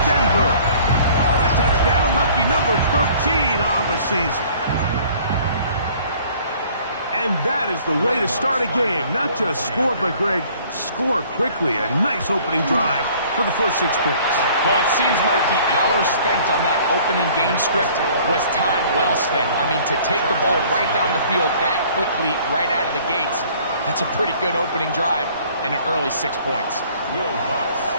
Denver. A touchdown, lucky number 13 on the season. And that is the way to start a game. Not just score, but, Greg, score quickly. A nice opening drive for the first 6 points. Well, it seems like the hour spent on that opening game script was time well spent. I mean, to take the ball right down the field that quickly, right out of the gates, that's a pretty good opening drive and an early 6 points. Will Lutz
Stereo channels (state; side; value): inverted; both; correlation -0.54